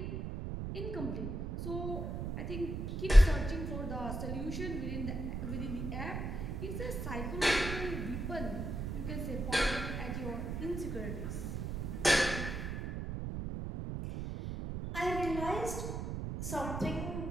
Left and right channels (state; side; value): noise; right; rumble, 4 dB below the sound